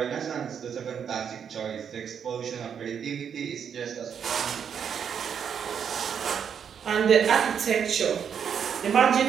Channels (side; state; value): left; quieter; 7.6 dB